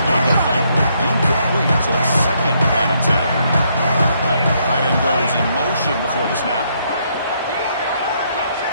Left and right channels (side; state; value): both; inverted; correlation -0.73